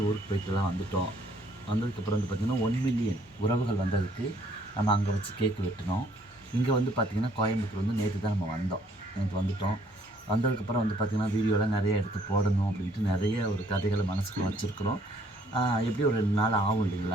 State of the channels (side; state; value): both; normal; correlation 0.63